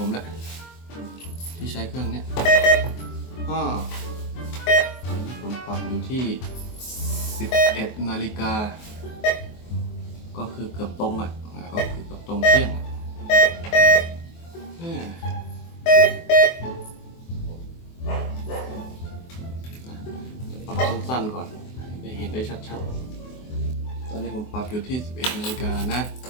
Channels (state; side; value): late; right; 24 ms